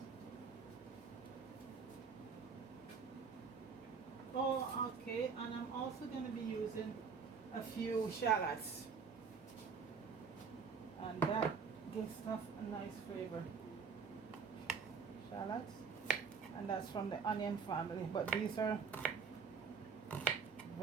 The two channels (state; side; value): quieter; left; 5.7 dB